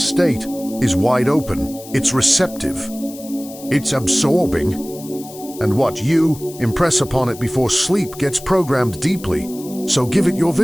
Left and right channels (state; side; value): noise; left; hiss, 17 dB below the sound